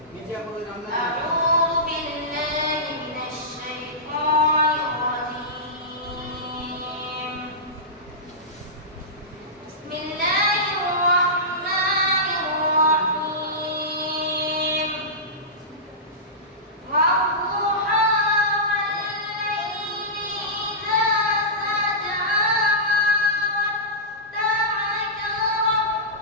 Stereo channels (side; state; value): both; normal; correlation -0.16